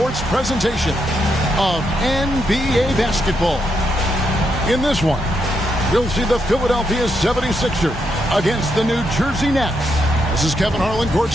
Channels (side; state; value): both; normal; correlation 0.80